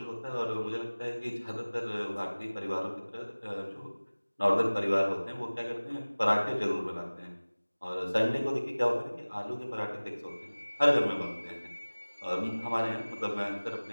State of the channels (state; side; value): inverted; both; correlation -1.00